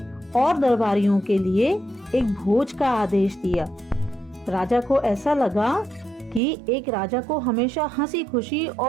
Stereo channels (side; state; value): left; drops out; at 6.4 s